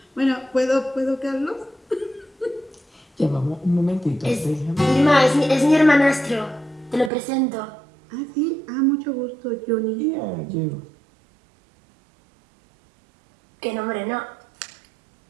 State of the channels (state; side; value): drops out; left; at 7.1 s